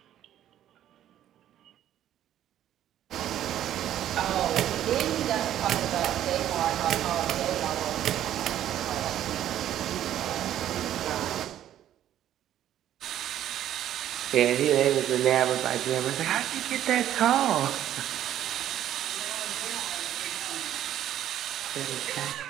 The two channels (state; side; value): quieter; left; 11.6 dB